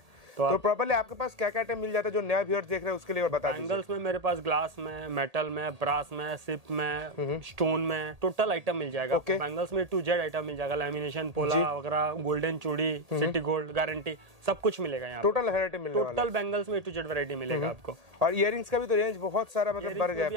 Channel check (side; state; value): left; late; 1.8 ms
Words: तो प्रॉपर्ली आपके पास क्या क्या आइटम मिल जाता है जो नया व्यूअर्स देख रहे हैं उसके लिए, और बता दीजिए। बैंगल्स में मेरे पास ग्लास में, मेटल में, ब्रास में, सिप में, स्टोन में, टोटल आइटम मिल जाएगा। Okay. बैंगल्स में टू जेड आइटम मिल जाएगा, लैमिनेशन, पोला वगैरह, गोल्डन चूड़ी, सिटी गोल्ड गारंटी, सब कुछ मिलेगा यहाँ। टोटल वैरायटी मिलने वाला है। टोटल बैंगल्स में टू जेड वैरायटी मिलेगा आपको। और इयररिंग्स का भी तो रेंज बहुत सारा मतलब बढ़ गया